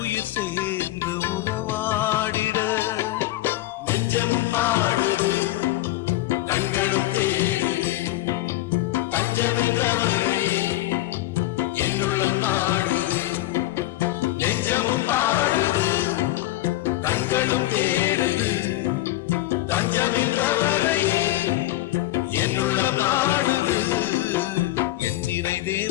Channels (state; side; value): quieter; right; 16.4 dB